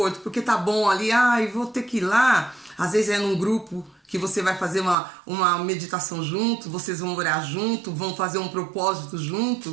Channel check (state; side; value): drops out; left; at 5.0 s